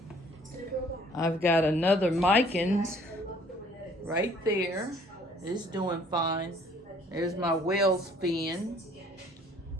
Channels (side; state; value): both; normal; correlation 0.57